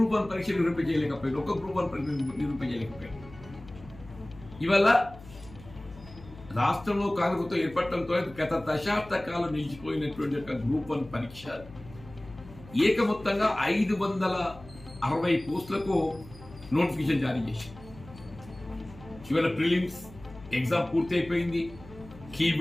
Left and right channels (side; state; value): left; noise; hum, 18 dB below the sound